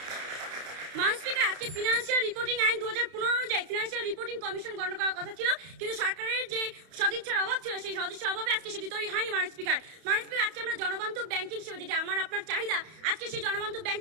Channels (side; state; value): left; late; 31 ms